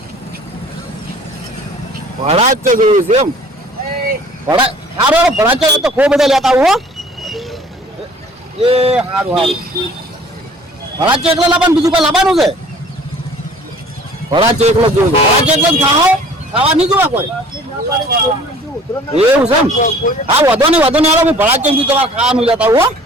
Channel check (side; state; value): both; normal; correlation 0.51